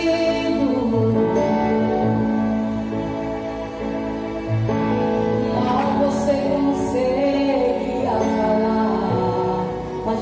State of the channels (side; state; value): both; identical; correlation 1.00